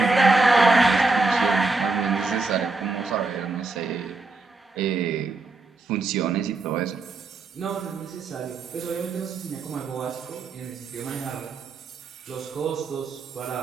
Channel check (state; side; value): quieter; left; 3.5 dB